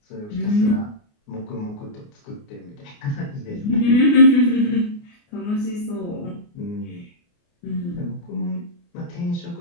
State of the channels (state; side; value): late; right; 29 ms